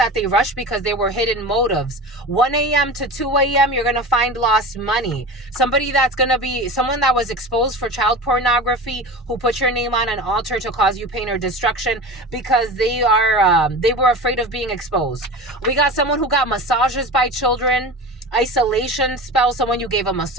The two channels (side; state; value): both; normal; correlation 0.31